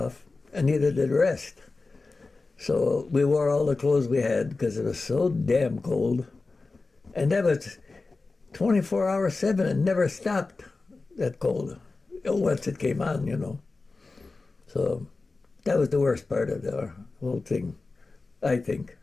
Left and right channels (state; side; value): quieter; right; 3.7 dB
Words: and neither did the rest. So we wore all the clothes we had because it was so damn cold. And that was 24 hours, 7, and never stopped, that cold. Once it came on, So that was the worst part of the whole thing, I think.